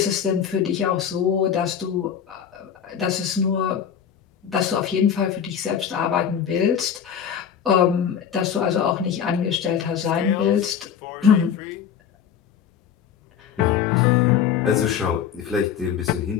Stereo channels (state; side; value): quieter; right; 8.3 dB